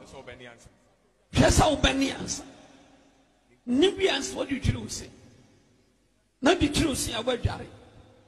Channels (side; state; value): both; identical; correlation 1.00